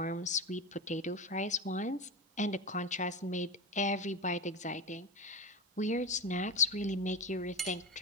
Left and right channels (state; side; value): normal; both; correlation 0.22